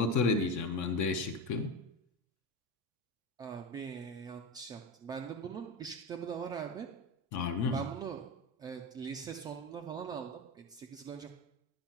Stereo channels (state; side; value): normal; both; correlation 0.21